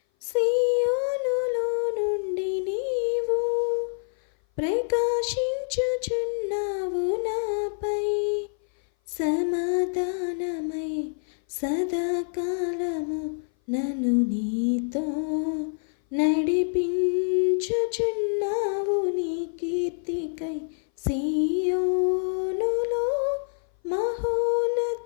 సియోనులో నుండి నీవు ప్రకాశించుచున్నావు నాపై, సమాధానమై సదాకాలము నన్ను నీతో నడిపించుచున్నావు నీ కీర్తికై, సియోనులో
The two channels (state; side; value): silent; right; 57 dB below the other